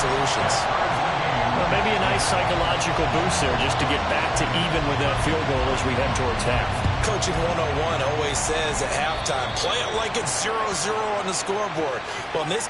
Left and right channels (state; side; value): identical; both; correlation 1.00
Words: Well, maybe a nice psychological boost there just to get back to even with that field goal as we head towards half. Coaching 101 always says at halftime, play it like it's 0-0 on the scoreboard. Well, in this